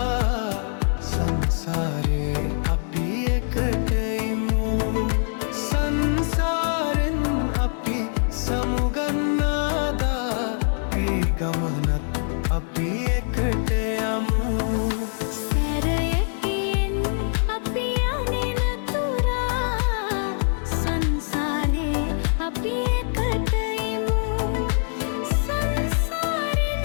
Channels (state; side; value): silent; right; digital silence